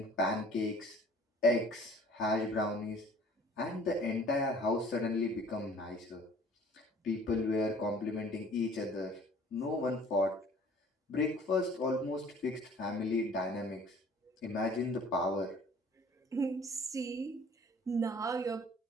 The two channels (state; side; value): normal; both; correlation 0.52